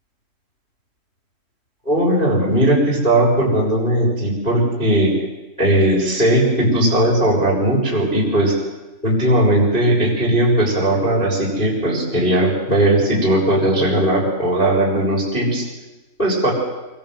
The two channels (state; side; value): late; right; 3.1 ms